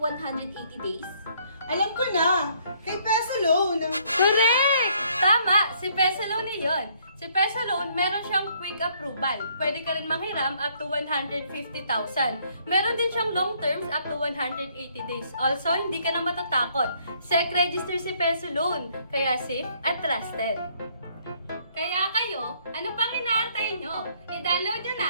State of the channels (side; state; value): both; inverted; correlation -0.65